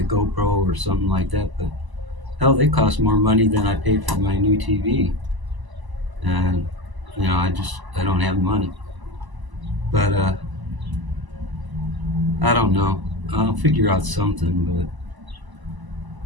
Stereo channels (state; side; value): late; left; 1.0 ms